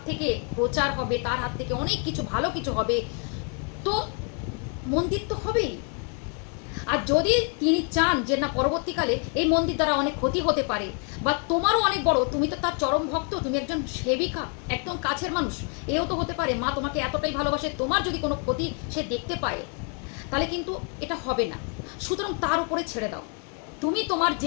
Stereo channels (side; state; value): right; quieter; 39.5 dB